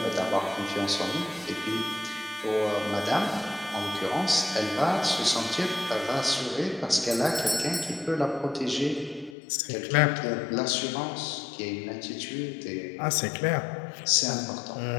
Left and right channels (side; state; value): right; drops out; at 9.3 s